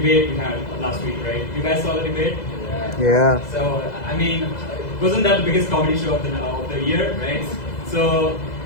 we had last week, right? You guys saw the debate? Yeah. So, I mean, wasn't that the biggest comedy show of the year, right? So,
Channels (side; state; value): right; late; 2.0 ms